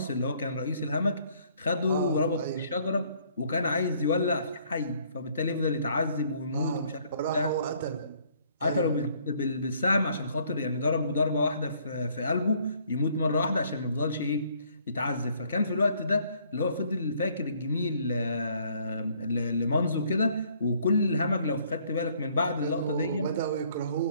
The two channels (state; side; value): inverted; both; correlation -0.63